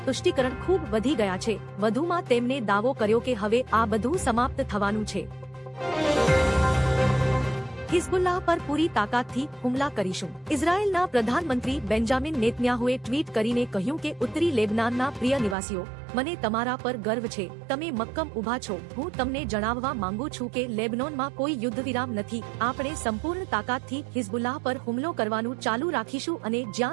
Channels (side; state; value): left; drops out; at 15.6 s